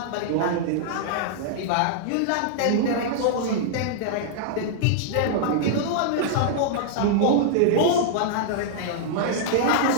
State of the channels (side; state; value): both; different; correlation -0.01